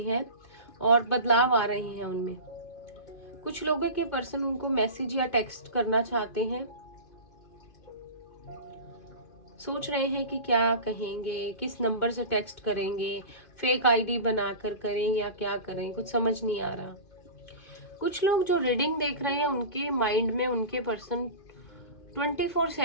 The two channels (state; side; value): late; right; 2.5 ms